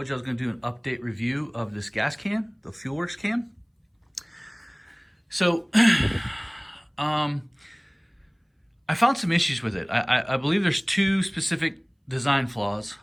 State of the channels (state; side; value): identical; both; correlation 1.00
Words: you I was going to do an update review of this gas can, the fuelworx can. So, I found some issues with it. I believe there's two specific design flaws